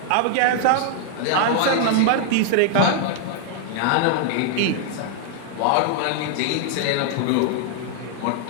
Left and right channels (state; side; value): different; both; correlation 0.00